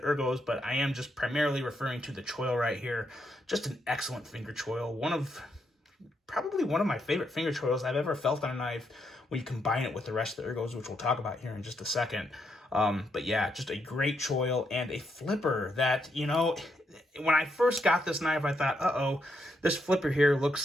ergos, but I am just primarily referring to the choil right here. Just an excellent finger choil. One of probably one of my favorite finger choils I've ever felt on a knife when you combine it with the rest of the ergos, which we'll talk about here in just a second. But yeah, just a great choil and a flipper that, you know, when I first got this knife, I thought, uh-oh, this flipper here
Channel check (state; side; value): normal; both; correlation 0.79